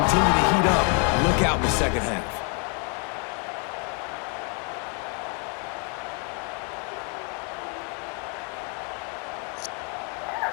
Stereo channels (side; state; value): right; quieter; 37.6 dB